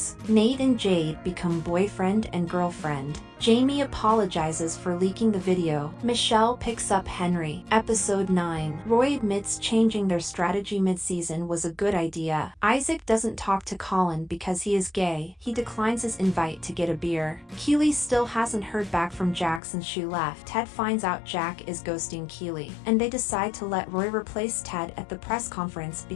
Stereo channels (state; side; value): drops out; right; at 19.6 s